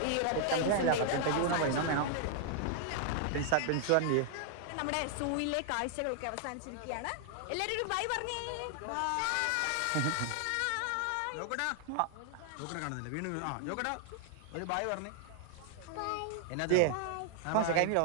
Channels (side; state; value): both; different; correlation 0.00